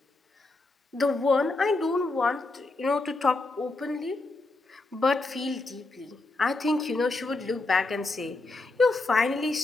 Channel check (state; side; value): quieter; right; 3.2 dB